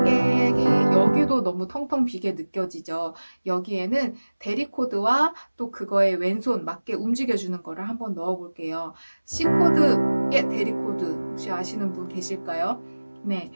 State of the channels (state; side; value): inverted; both; correlation -1.00